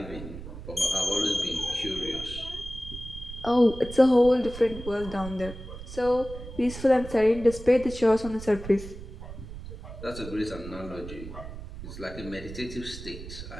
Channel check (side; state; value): right; noise; rumble, 12 dB below the sound